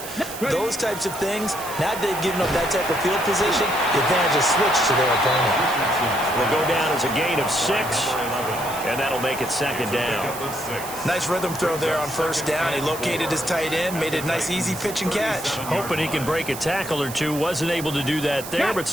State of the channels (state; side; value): noise; right; hiss, 11 dB below the sound